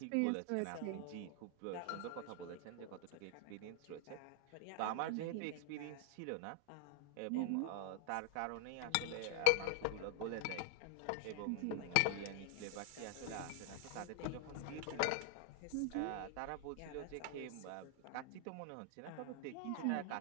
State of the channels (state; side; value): different; both; correlation 0.00